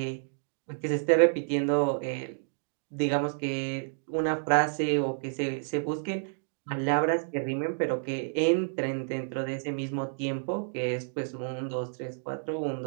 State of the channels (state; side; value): silent; left; digital silence